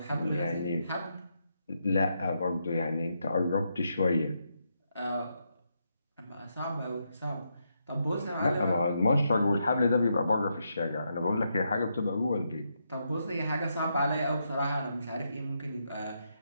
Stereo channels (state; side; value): inverted; both; correlation -0.81